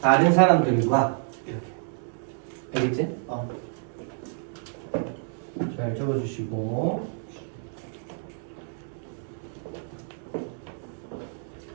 사람들과 이렇게. 알겠지? 잘 적어주시고.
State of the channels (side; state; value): left; silent; digital silence